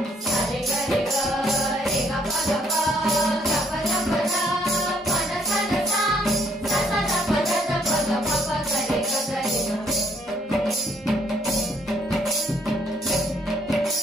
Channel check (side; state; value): both; normal; correlation 0.68